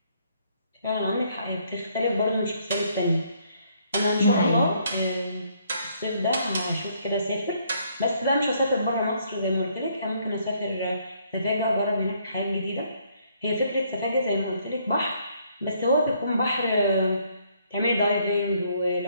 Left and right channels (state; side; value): inverted; both; correlation -0.68